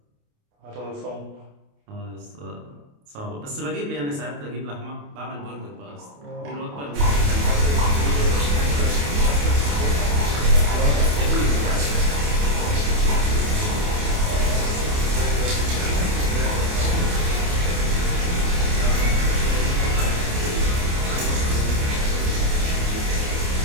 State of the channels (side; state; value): left; late; 28 ms